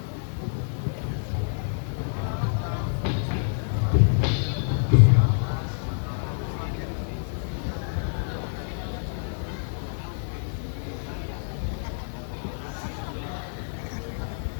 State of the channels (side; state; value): right; silent; digital silence